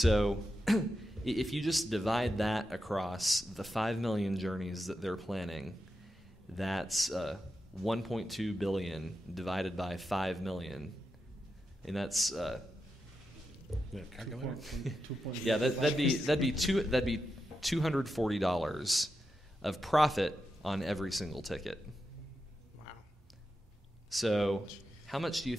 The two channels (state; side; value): normal; both; correlation 0.88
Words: if you just divide that across the 5 million journeys that they're planning, that's 1.2 billion divided by 5 million. And that's that'd be $240 of profit on every single ticket. Wow. So how much do you